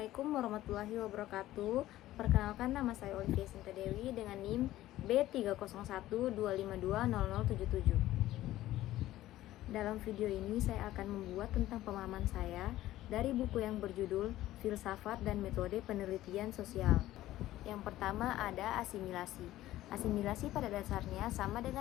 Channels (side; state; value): right; quieter; 15.0 dB